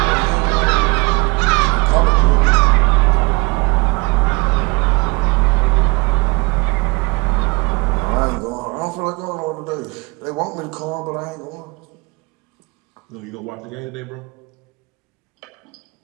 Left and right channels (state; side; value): quieter; left; 26.8 dB